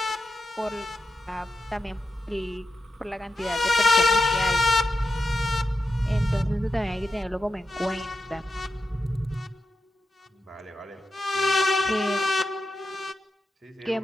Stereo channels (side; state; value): both; normal; correlation 0.88